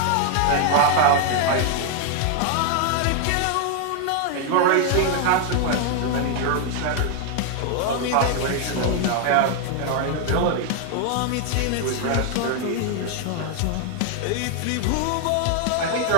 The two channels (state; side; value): different; both; correlation 0.00